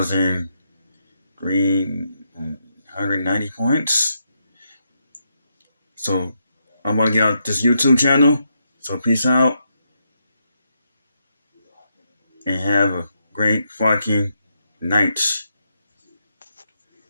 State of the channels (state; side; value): inverted; both; correlation -0.81